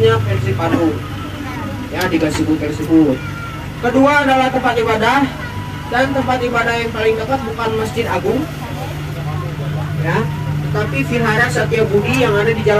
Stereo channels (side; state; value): both; identical; correlation 1.00